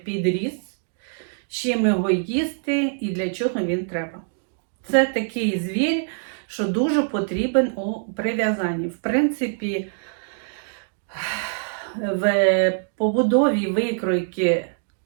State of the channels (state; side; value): silent; left; digital silence